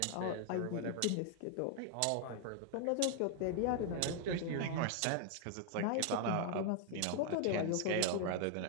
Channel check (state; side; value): different; both; correlation 0.00